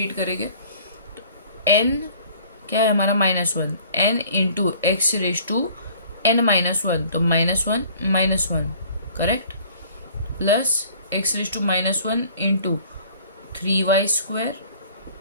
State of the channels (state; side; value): inverted; both; correlation -0.52